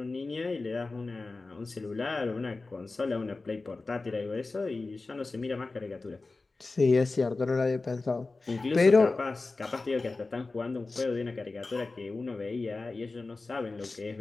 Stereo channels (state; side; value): quieter; right; 3.6 dB